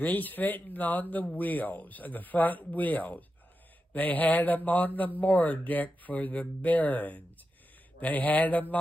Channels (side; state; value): both; normal; correlation 0.89